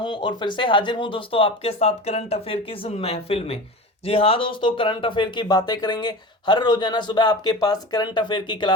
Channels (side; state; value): both; normal; correlation 0.31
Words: और फिर से हाजिर हूं दोस्तों आपके साथ करंट अफेयर की इस महफिल में। जी हाँ दोस्तों, करंट अफेयर की बातें करेंगे। हर रोजाना सुबह आपके पास करंट अफेयर की